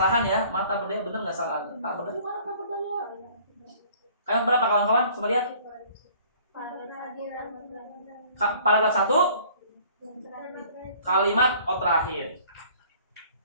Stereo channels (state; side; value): inverted; both; correlation -0.54